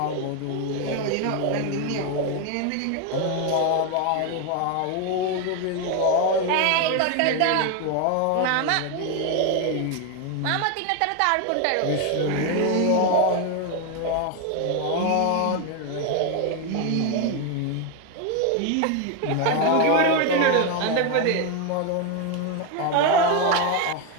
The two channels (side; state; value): both; different; correlation 0.02